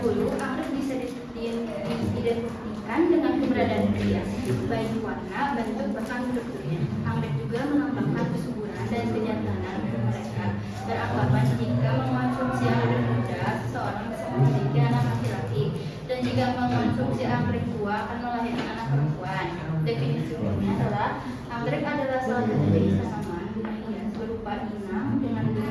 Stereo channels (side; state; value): both; identical; correlation 1.00